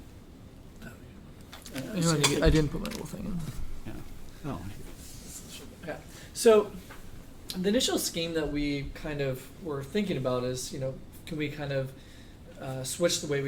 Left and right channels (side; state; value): both; identical; correlation 1.00